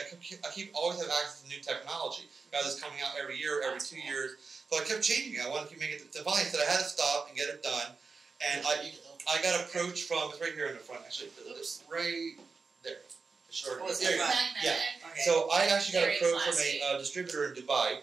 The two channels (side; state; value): left; quieter; 4.6 dB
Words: keep always have access to new technology. Guys, it's coming out every year, every 2 years. So I kept changing it. I wanted to keep making it. So finally, I said I had to stop and get it done. And I got approached from, it's right here in the front actually. It's right there. Sure. Oh, There you go. Yeah. Okay. So I actually got Very approached classy. from a distributor in Dubai,